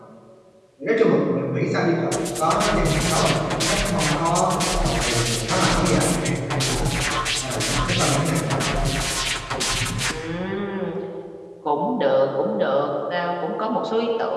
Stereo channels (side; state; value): both; identical; correlation 1.00